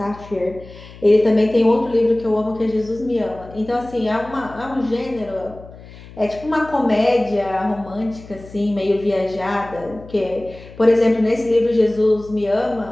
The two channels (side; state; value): left; noise; hum, 18 dB below the sound